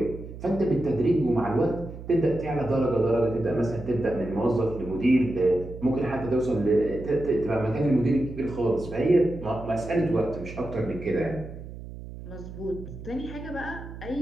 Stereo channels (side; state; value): right; noise; hum, 12 dB below the sound